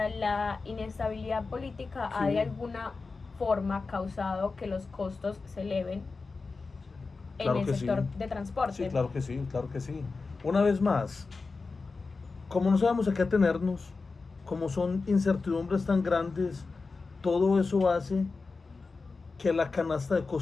la inestabilidad política ha Sí. de alguna forma causado que los costos se eleven en Claro el que sector sí. de transporte. Sí, claro que sí, claro que sí. Una vez más, como no sabemos a qué atenernos, como son incertidumbres tan grandes, todo eso hace que la canasta de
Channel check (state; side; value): quieter; right; 4.1 dB